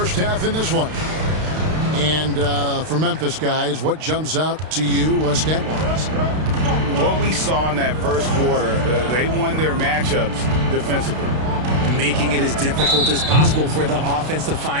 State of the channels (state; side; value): late; left; 32 ms